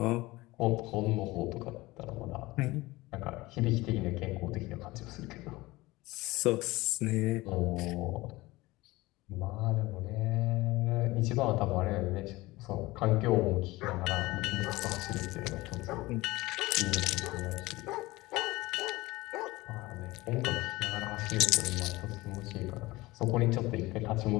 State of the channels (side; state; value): right; quieter; 20.2 dB